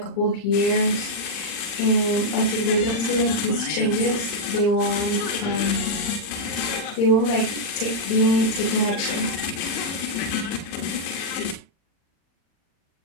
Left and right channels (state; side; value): late; right; 40 ms